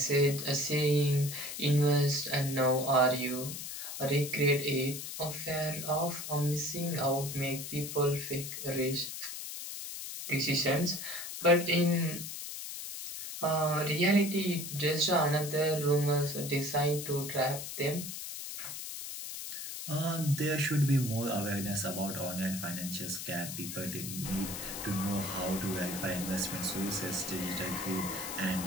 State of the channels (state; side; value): noise; left; hiss, 7 dB below the sound